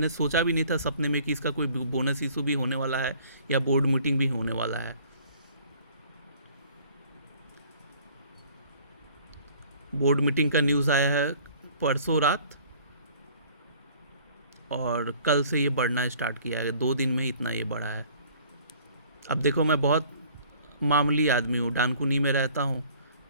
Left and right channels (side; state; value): both; inverted; correlation -0.54